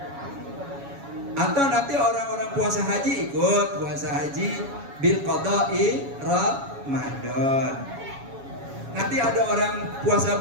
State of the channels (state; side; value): late; left; 7.2 ms